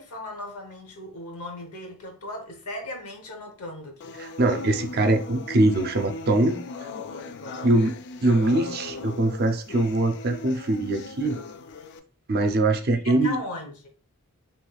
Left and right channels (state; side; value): normal; both; correlation 0.61